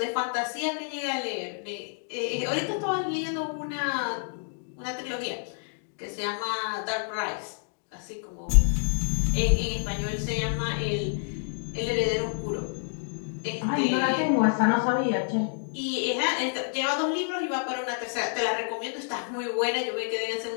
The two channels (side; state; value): right; silent; 59 dB below the other